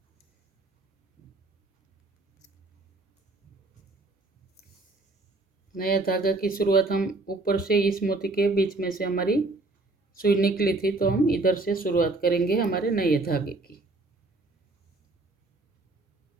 नया धागा की शुरुआत हम ऊपर से इस मोती के बीच में से हमारी सुई निकली थी, तो हम इधर से शुरुआत करेंगे हमारे नए धागे की।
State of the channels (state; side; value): quieter; left; 3.1 dB